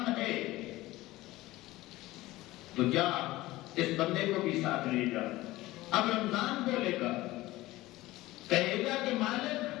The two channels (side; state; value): right; quieter; 18.1 dB